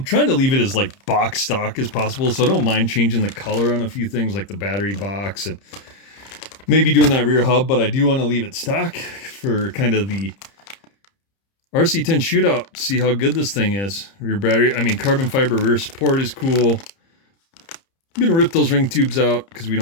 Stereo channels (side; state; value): right; late; 30 ms